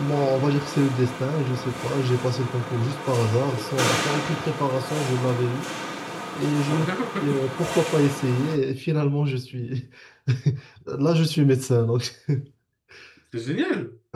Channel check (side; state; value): both; identical; correlation 1.00